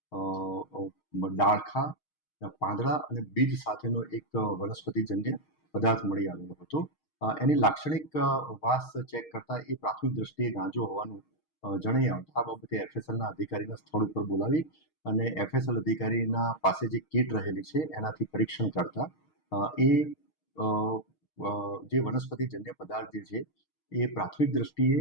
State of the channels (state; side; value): late; right; 6.4 ms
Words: ડાળખા, પાંદડા અને બીજ સાથેનો એક વનસ્પતિજન્ય પદાર્થ મળી આવેલો હતો. એની લાક્ષણિક વાસ ચેક કરતા એ પ્રાથમિક દ્રષ્ટિએ ગાંજો હોવાનું જણાઈ આવતા આ બાબતે એફએસએલના અધિકારીના સ્થળ ઉપર બોલાવી અને એફએસએલ અધિકારીના પાસે જે કીટ રહેલી છે એનાથી પરીક્ષણ કરતા એ જે વનસ્પતિજન્ય પદાર્થ જે છે એ પ્રાથમિક દ્રષ્ટિએ